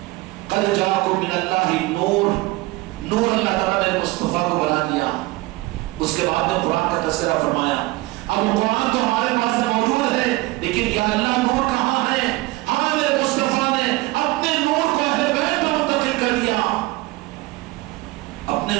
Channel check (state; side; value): quieter; left; 20.8 dB